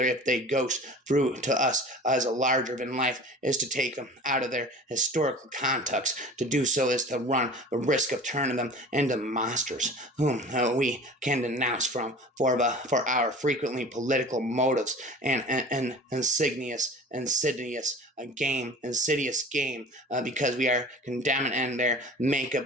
if they ghost through to us as a larger than life, is to take them out of their historical context. To do so is to run the risk of turning them into monsters whom we can denounce for our frequently political motives and insidious game, because we are condemning and their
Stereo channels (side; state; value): both; normal; correlation 0.40